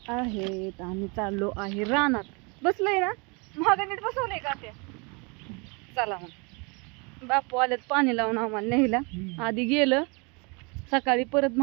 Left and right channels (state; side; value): quieter; left; 31.3 dB